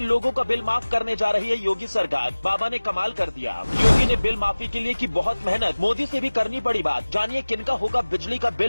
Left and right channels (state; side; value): inverted; both; correlation -1.00